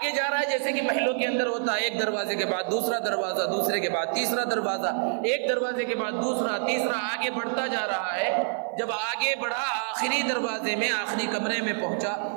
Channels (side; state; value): left; silent; digital silence